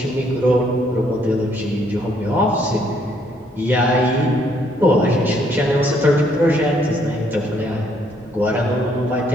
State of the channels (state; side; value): normal; both; correlation 0.69